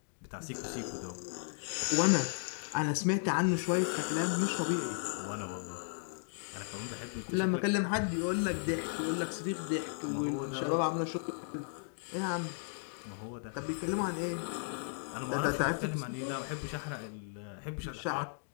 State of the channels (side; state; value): right; silent; digital silence